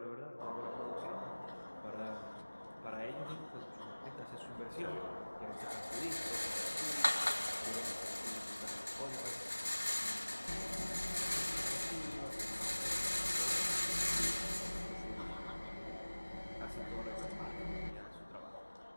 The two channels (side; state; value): both; inverted; correlation -1.00